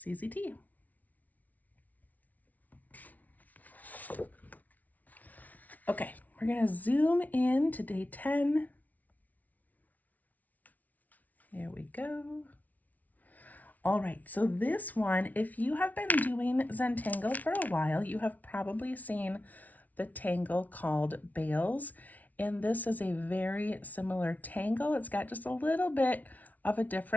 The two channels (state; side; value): late; right; 0.075 ms